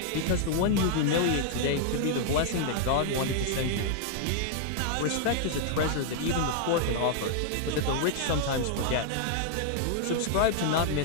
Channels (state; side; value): different; both; correlation 0.00